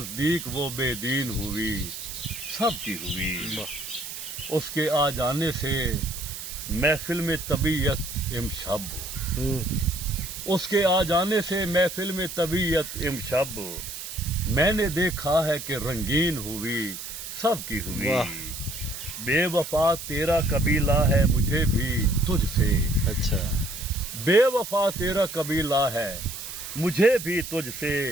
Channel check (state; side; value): noise; right; hiss, 9 dB below the sound